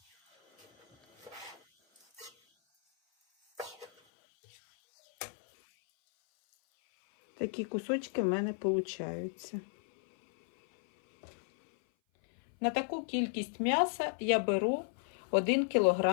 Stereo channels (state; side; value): drops out; right; at 3.9 s